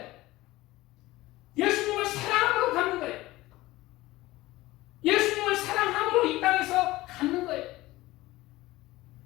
예수님을 사랑함으로 갚는 거예요. 예수님을 사랑함으로 이 땅에서 갚는 거예요.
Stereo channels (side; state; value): right; quieter; 18.3 dB